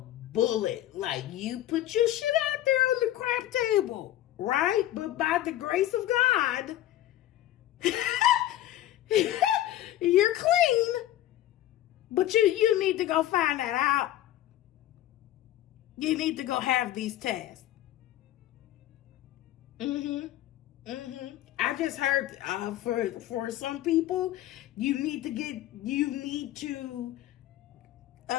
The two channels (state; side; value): quieter; right; 13.6 dB